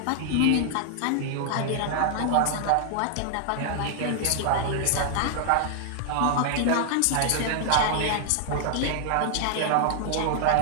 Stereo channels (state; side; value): different; both; correlation -0.01